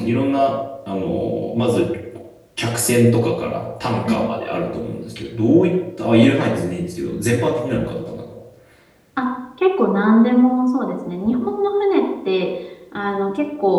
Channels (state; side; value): identical; both; correlation 1.00